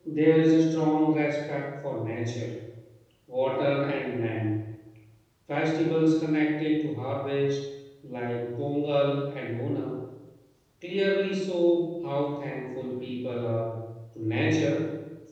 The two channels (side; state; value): both; identical; correlation 1.00